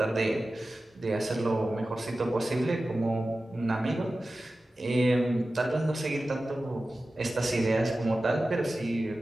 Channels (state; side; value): normal; both; correlation 0.95